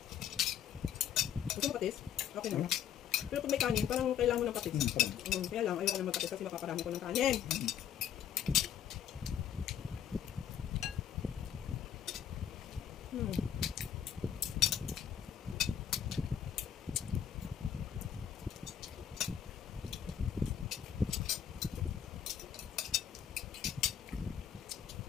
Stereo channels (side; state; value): right; quieter; 9.3 dB